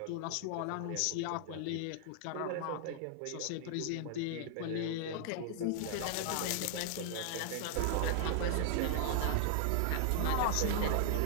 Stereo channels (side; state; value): both; different; correlation 0.00